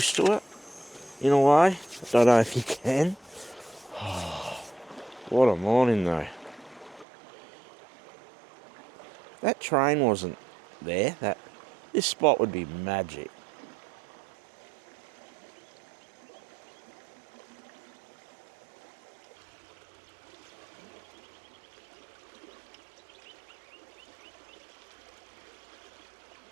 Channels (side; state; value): left; drops out; at 7.1 s